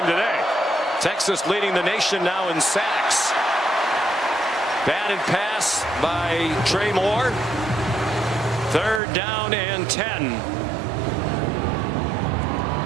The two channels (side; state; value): left; drops out; at 9.0 s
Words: today. Texas leading the nation now in sacks. Batted pass by Trey Moore. 3rd down and 10.